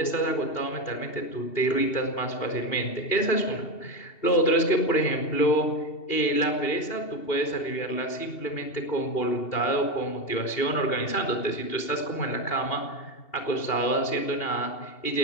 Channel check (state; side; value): late; right; 2.7 ms